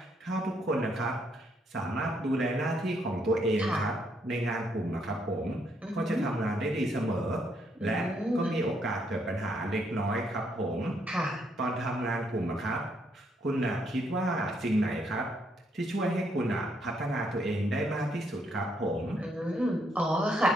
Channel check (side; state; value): both; normal; correlation 0.73